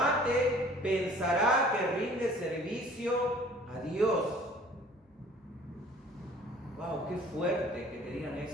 pensará que rinde servicio a Dios. ¡Wow! ¡Qué fuerte que te digan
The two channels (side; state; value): both; normal; correlation 0.51